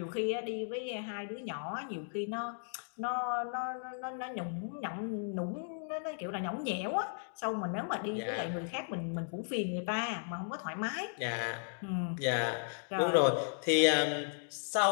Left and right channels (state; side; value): silent; right; digital silence